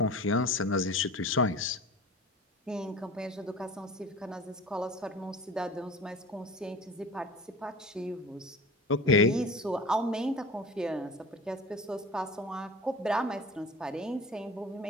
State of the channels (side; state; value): both; normal; correlation 0.37